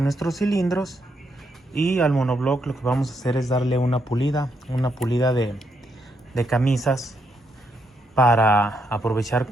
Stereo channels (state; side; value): normal; both; correlation 0.78